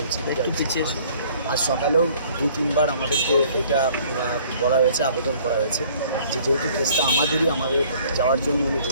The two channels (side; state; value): both; inverted; correlation -0.56